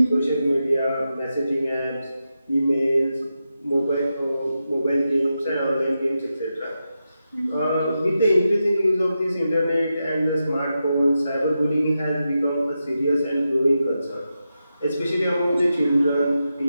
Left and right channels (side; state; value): both; inverted; correlation -0.89